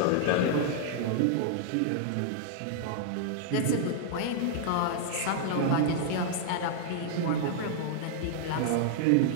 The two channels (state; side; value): different; both; correlation -0.01